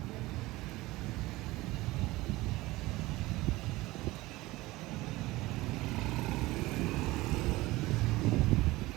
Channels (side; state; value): left; quieter; 19.6 dB